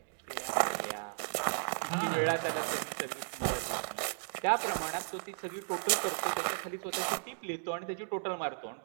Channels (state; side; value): silent; left; digital silence